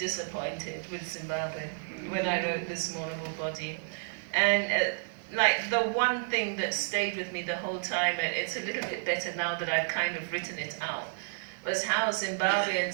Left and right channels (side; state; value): left; silent; 57 dB below the other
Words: with Zimbabwe when I wrote this mournable body, and like the one thing that stayed with me the whole time, and it's a little bit better now that I've kind of written it out, was how